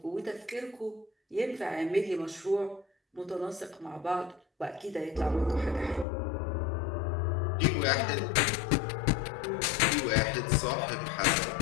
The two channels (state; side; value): drops out; right; at 6.1 s